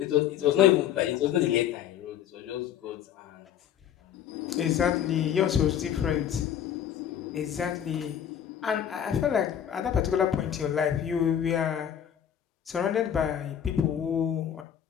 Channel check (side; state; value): right; quieter; 9.6 dB